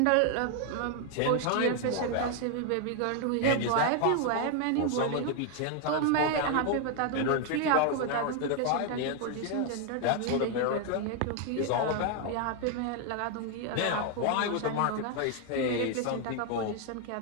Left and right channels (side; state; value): both; different; correlation 0.00